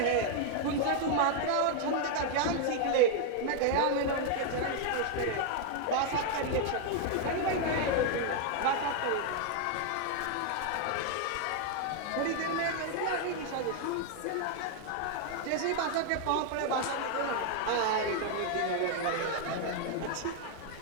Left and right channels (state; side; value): different; both; correlation 0.00